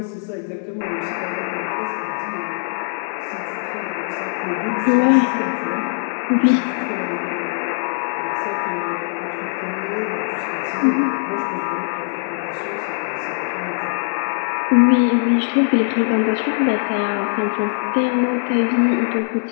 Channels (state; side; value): silent; right; digital silence